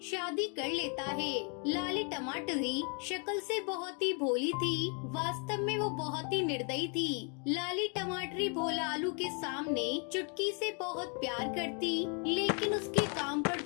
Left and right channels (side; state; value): right; quieter; 37.8 dB